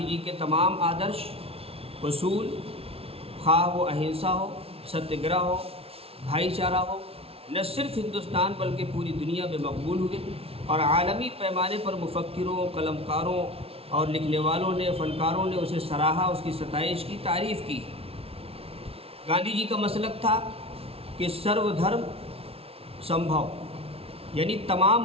جی کے تمام آدرش، اصول، خواہ وہ اہنسا ہو، ستیہ گرہ ہو، بھائی چارہ ہو، نہ صرف ہندوستان بلکہ پوری دنیا میں مقبول ہوئے، اور عالمی پیمانے پر مفکروں، قلمکاروں اور لکھنے والوں نے، فنکاروں نے اسے سراہا، اس کی ستائش کی، تعریف کی۔ گاندھی جی کا مسلک تھا کہ سرو دھرم سمبھو، یعنی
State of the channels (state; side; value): late; left; 0.28 ms